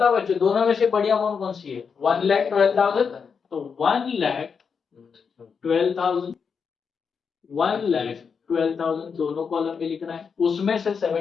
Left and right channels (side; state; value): right; quieter; 6.0 dB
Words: बच्चों, दोनों में से बड़ी अमाउंट कौन सी है? 1,12,000। तो 1,12,000, 1,12,000 दोनों कॉलम में लिखना है। उसमें से